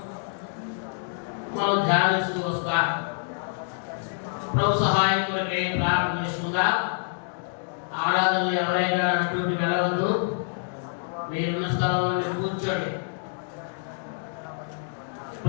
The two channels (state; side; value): silent; right; digital silence